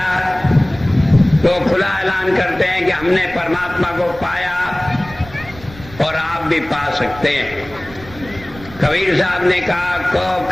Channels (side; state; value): right; noise; rumble, 18 dB below the sound